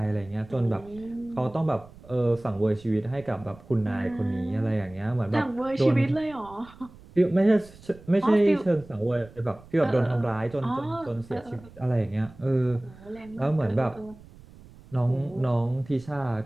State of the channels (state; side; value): noise; right; rumble, 22 dB below the sound